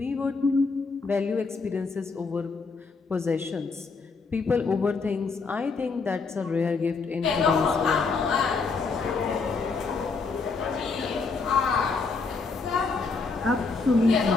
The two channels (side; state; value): right; quieter; 4.5 dB